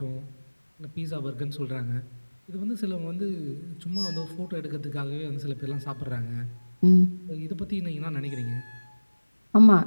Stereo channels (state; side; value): inverted; both; correlation -1.00